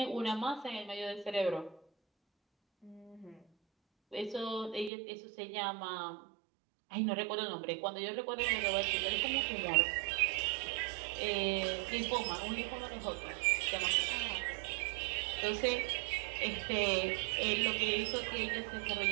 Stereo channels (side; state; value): left; drops out; at 4.9 s